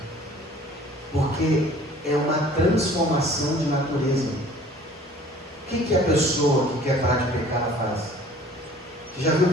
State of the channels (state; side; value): normal; both; correlation 0.50